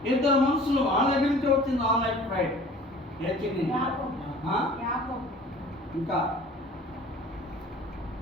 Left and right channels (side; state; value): both; normal; correlation 0.46